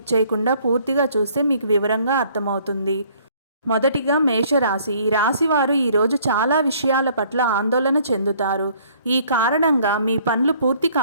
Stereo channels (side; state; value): both; inverted; correlation -0.59